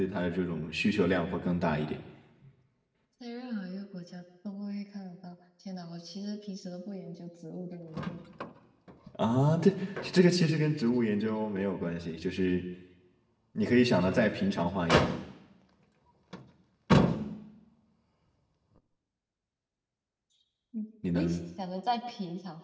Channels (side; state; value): both; identical; correlation 1.00